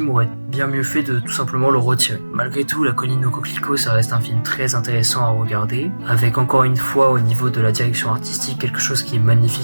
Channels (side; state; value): both; inverted; correlation -1.00